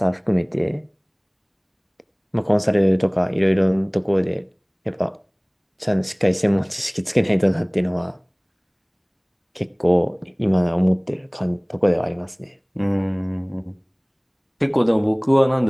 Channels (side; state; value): both; identical; correlation 1.00